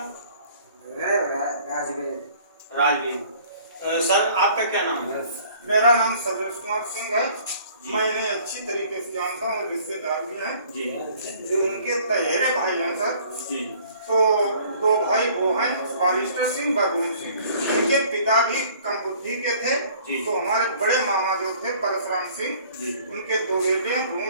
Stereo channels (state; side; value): inverted; both; correlation -0.54